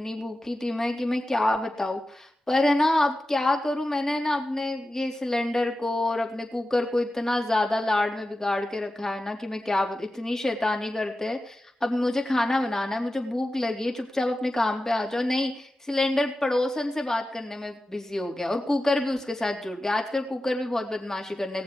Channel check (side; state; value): both; normal; correlation 0.93